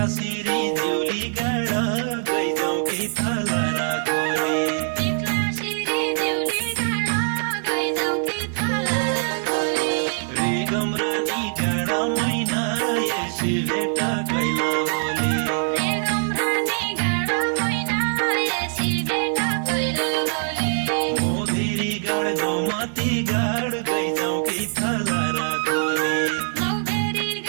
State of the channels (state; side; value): silent; left; digital silence